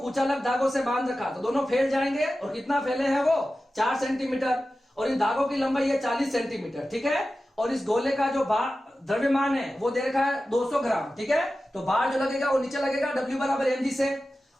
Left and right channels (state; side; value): normal; both; correlation 0.94